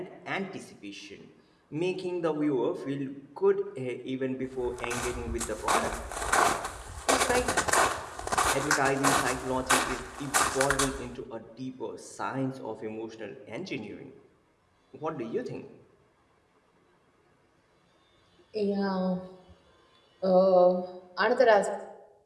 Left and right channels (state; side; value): identical; both; correlation 1.00